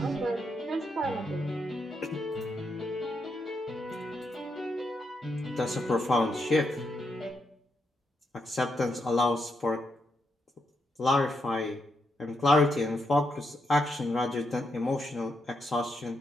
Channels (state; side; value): normal; both; correlation 0.81